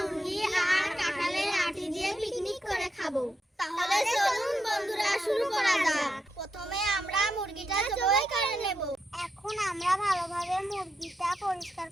মুরগি আর কাঁঠালের আটি দিয়ে পিকনিক করে খাবো। তাহলে চলুন বন্ধুরা, শুরু করা যাক। প্রথমে আমরা মুরগিটা জবাই করে নেব। এখন আমরা ভালোভাবে মুরগিটা পরিষ্কার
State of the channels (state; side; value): normal; both; correlation 0.83